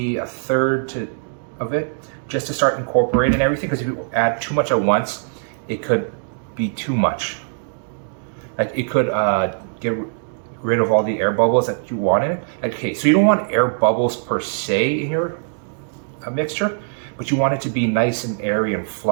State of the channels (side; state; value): left; silent; digital silence